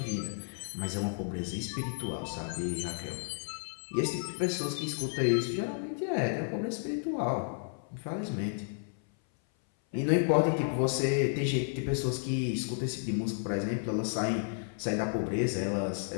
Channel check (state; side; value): silent; right; 56 dB below the other